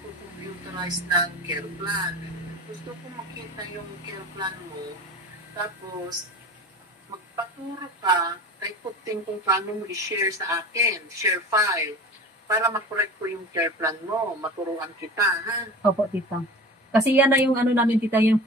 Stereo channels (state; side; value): normal; both; correlation 0.35